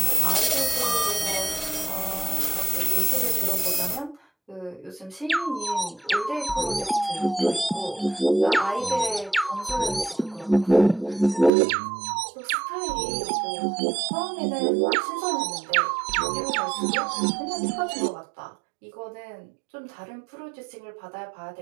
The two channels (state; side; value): drops out; left; at 11.5 s